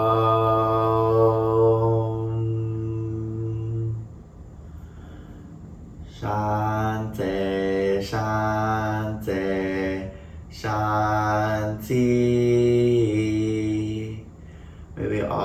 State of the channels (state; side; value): identical; both; correlation 1.00